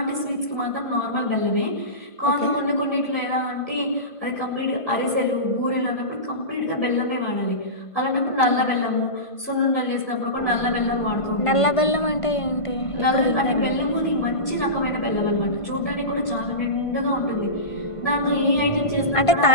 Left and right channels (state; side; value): late; right; 1.5 ms